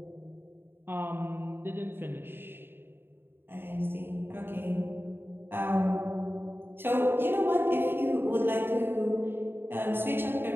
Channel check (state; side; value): late; left; 0.10 ms